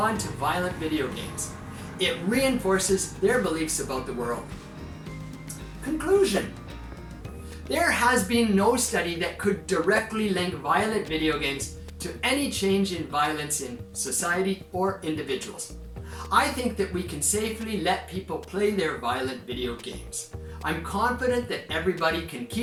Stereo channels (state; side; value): identical; both; correlation 1.00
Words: to violent video games. It reinforces their beliefs about the world. Conclusion. There has been no study that could directly link violent video games to any change in violence in society or individuals. I think that we can safely let people play their violent video games. I'm confident that everybody can